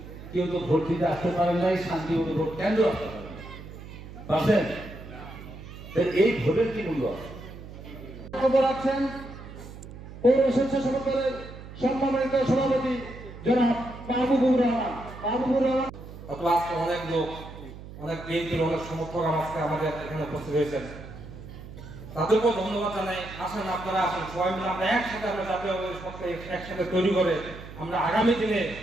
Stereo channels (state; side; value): noise; right; hum, 14 dB below the sound